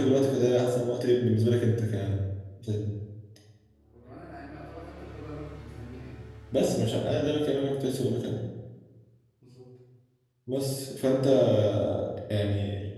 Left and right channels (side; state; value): both; identical; correlation 1.00